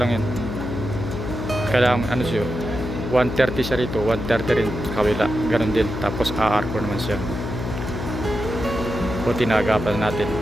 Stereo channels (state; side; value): noise; left; hum, 5 dB below the sound